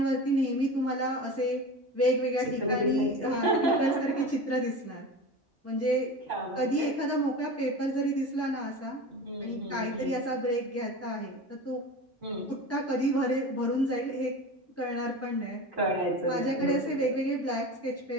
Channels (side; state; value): both; normal; correlation 0.31